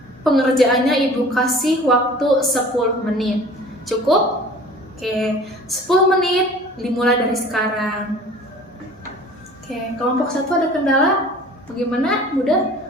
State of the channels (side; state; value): both; normal; correlation 0.46